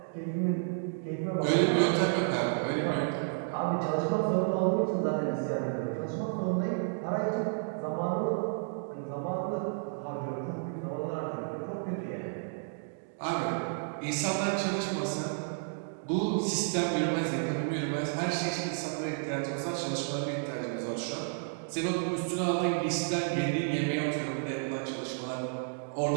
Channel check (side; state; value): left; silent; digital silence